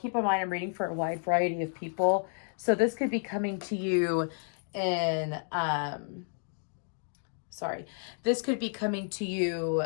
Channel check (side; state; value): right; silent; 57 dB below the other